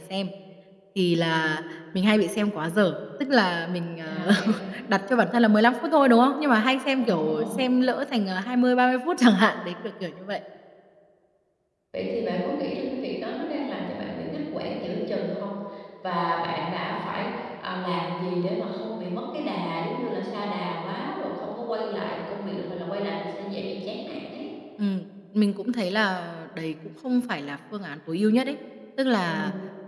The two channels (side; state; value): both; identical; correlation 1.00